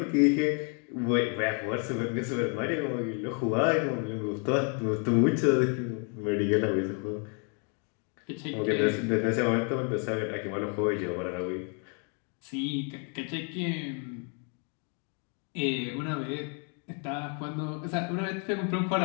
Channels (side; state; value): right; quieter; 38.8 dB